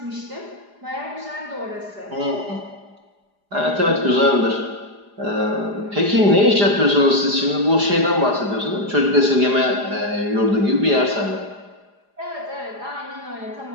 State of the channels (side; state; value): left; late; 4.9 ms